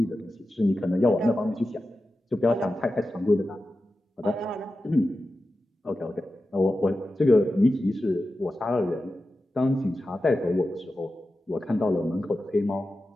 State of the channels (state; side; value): normal; both; correlation 0.92